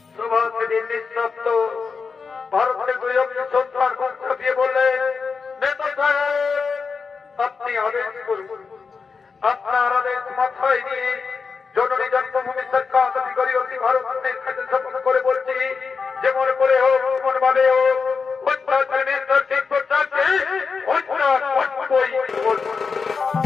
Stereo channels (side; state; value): right; quieter; 5.2 dB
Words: সুভাষে দিল্লির শব্দ ভারতের 2 অক্ষর সন্তান মুখ ছাপিয়ে বললেন, নেতা সাহেব আপনি আদেশ করুন। আপনার আদেশ মাথায় নিয়ে জননী জন্মভূমি সরকার অধিকারী অতি ভারতের কাছে শপথ করে বলছি, যেমন করে হোক, যেমন ভাবে হোক, অত্যাচার মিনিস্টার শিক্ষককে হত্যা করবই করবো।